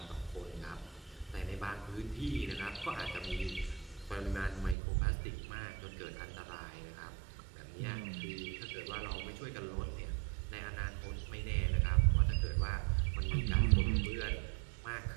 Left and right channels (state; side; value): drops out; left; at 4.8 s